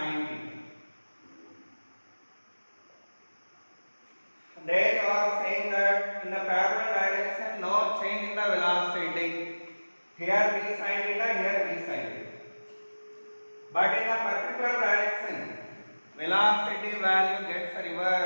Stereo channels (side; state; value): both; inverted; correlation -1.00